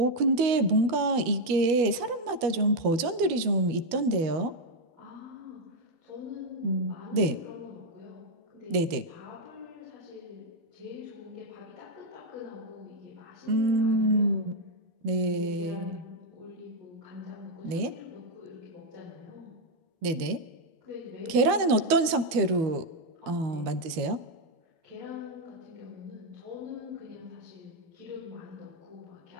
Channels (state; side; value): late; left; 13 ms